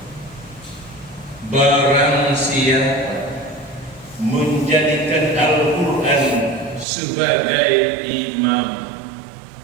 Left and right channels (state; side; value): drops out; left; at 6.9 s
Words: siapa menjadikan Al-Quran sebagai imam.